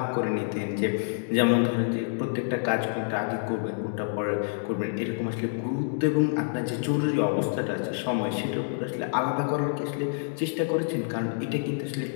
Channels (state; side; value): silent; right; digital silence